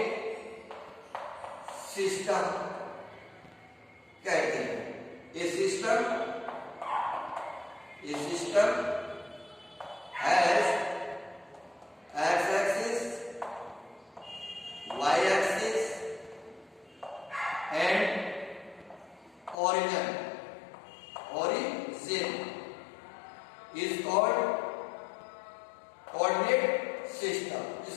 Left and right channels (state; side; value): drops out; right; at 19.6 s